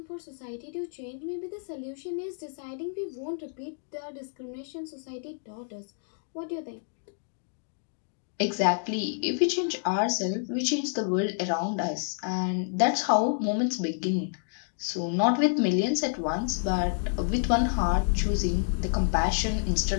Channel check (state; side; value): silent; right; digital silence